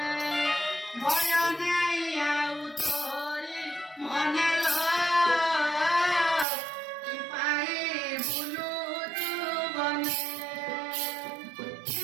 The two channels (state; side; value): drops out; left; at 6.5 s